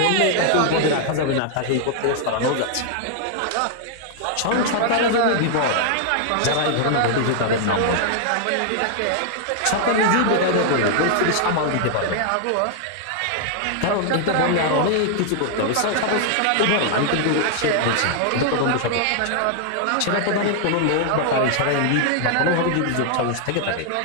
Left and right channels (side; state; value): both; different; correlation 0.00